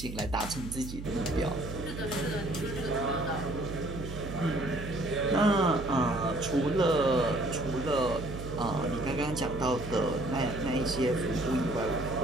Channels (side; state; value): right; noise; hum, 9 dB below the sound